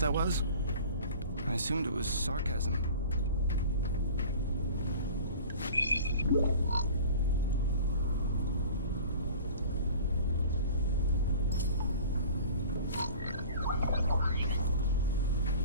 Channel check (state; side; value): inverted; both; correlation -0.42